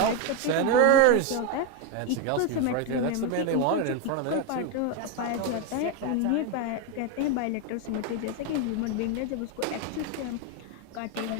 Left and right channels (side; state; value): both; different; correlation 0.02